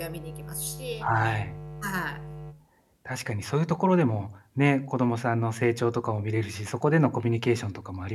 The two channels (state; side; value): identical; both; correlation 1.00